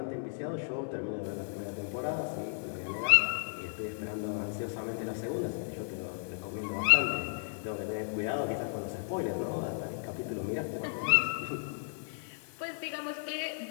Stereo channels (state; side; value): silent; right; digital silence